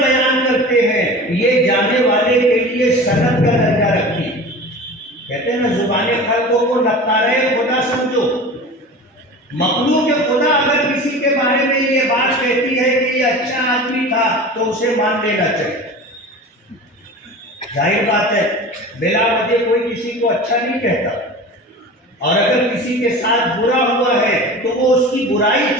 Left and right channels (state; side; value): normal; both; correlation 0.35